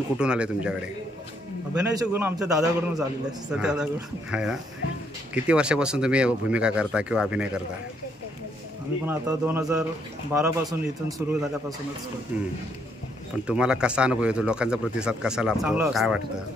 कुठून आले तुमच्याकडे? अभिनयाचे गुण आमच्या दादाकडूनच आलेले आहेत, सत्यदादाकडून. आहे ना. किती वर्षापासून तुम्ही भूमिका करता किंवा अभिनय करता? आम्ही पण आता 2012 पासून इथून सुरू झाल्यापासूनच करतो. पण तुम्हाला कसा अनुभव येतो, लोकांचा प्रतिसाद कसा चांगला लाभतो, असतो. काय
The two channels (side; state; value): both; normal; correlation 0.72